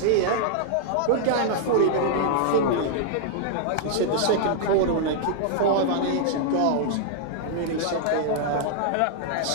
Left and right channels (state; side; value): different; both; correlation -0.01